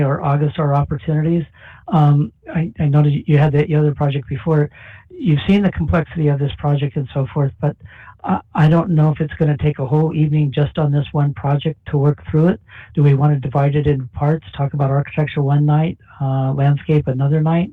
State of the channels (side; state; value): both; identical; correlation 1.00